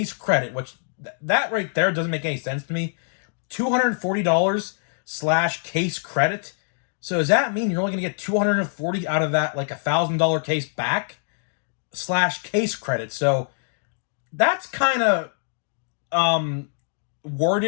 credit, which that right there doesn't make any sense to me. $240/case credit. So does that mean you're only going to get $240 out of that, like $1,000 case back / case credit? So that's kind of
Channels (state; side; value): silent; right; digital silence